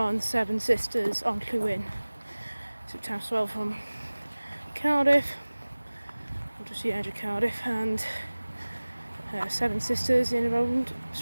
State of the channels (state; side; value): inverted; both; correlation -1.00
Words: Seven Sisters Onllwyn. So Taffs from Cardiff, just the edge of Cardiff, and Seven Sisters in around